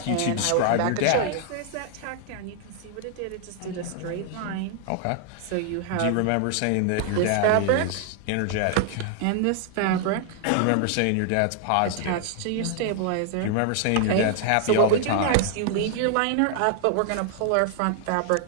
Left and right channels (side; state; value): both; different; correlation 0.00